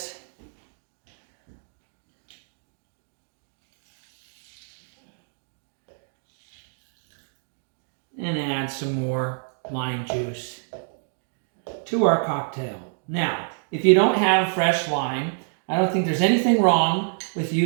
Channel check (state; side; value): silent; left; digital silence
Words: And add some more lime juice to our cocktail. Now, if you don't have fresh lime, I don't think there's anything wrong with